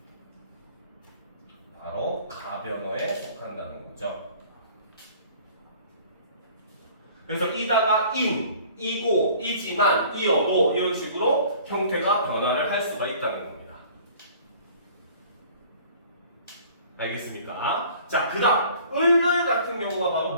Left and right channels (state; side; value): inverted; both; correlation -0.50